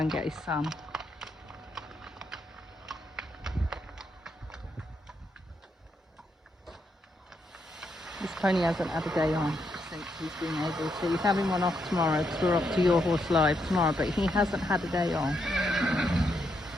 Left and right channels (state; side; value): normal; both; correlation 0.79